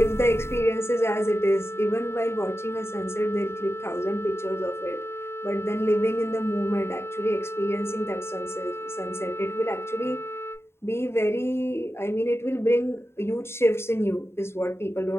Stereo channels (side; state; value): right; late; 0.12 ms